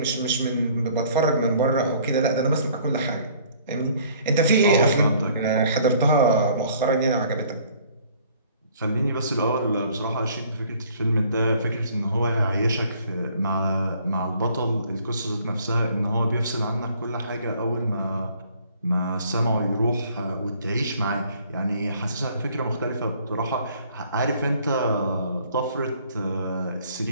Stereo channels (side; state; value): both; inverted; correlation -0.58